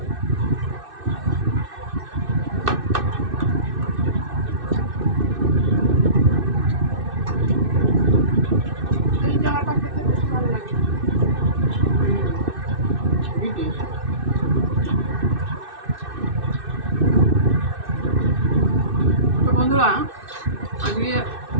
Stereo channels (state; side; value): late; left; 2.6 ms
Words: এই জায়গাটা খেতে বেশ ভালো লাগে। তো বন্ধুরা, আজকে